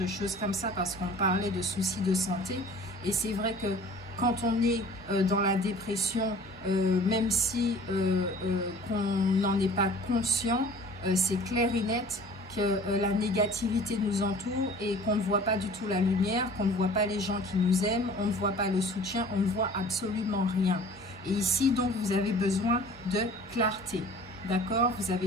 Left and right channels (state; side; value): normal; both; correlation 0.46